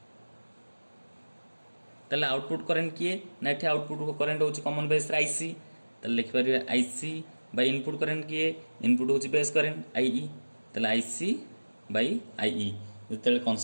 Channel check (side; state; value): both; inverted; correlation -1.00